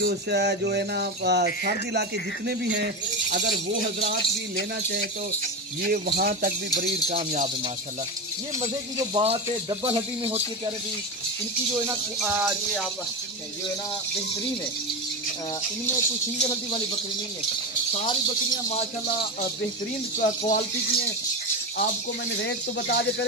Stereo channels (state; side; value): normal; both; correlation 0.18